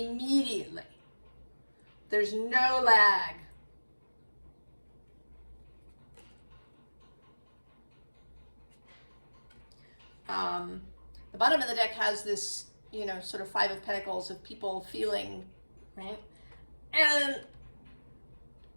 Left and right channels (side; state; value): both; inverted; correlation -1.00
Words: There's no lag. The bottom of the deck has this, sort of Five of Pentacles of people feeling, right? And